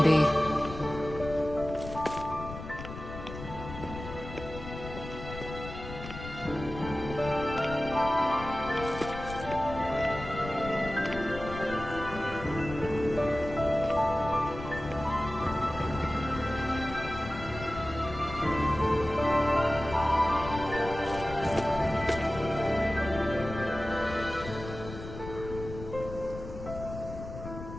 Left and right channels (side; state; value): left; noise; rumble, 11 dB below the sound